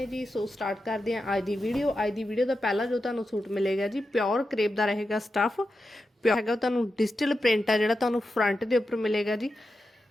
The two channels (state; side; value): normal; both; correlation 0.90